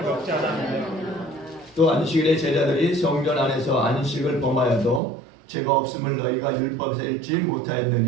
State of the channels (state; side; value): drops out; left; at 5.0 s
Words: 먹지 않았느냐. 또 안식일에 제자들이 성전 안에서 안식을 범하여도 죄가 없음을 너희가 율법에서 읽지